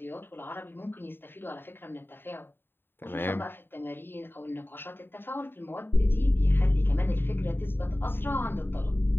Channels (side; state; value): right; late; 0.10 ms